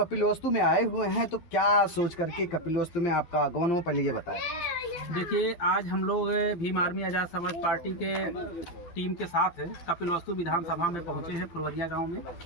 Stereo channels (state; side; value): late; right; 12 ms